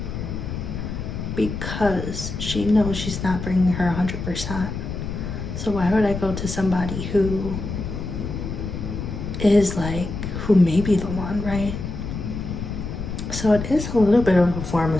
because she knows she's not bringing her 100%. So why would I go to somebody who is like, who may be the one, right? So it is a little bit of a form of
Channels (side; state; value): left; noise; rumble, 6 dB below the sound